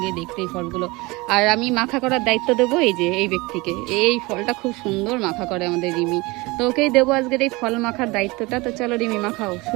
দেখতে এই ফলগুলো। আর আমি মাখা করার দায়িত্ব দেবো এই যে এই ব্যক্তিকে। এই ফলটা খুব সুন্দর মাখা করে আমাদের রিমি, তো ওকেই দেবো আজকের এই ফল মাখার দায়িত্বটা। তো চলো রিমি, মাখাও,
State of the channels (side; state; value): left; quieter; 23.5 dB